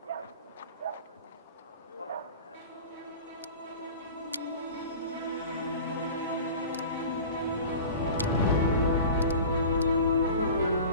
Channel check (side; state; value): both; inverted; correlation -0.38